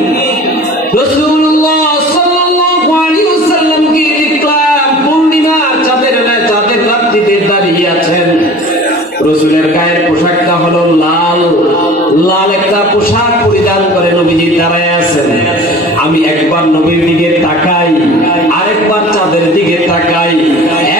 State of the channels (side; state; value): both; normal; correlation 0.42